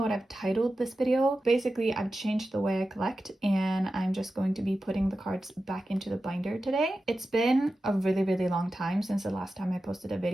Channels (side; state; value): both; normal; correlation 0.93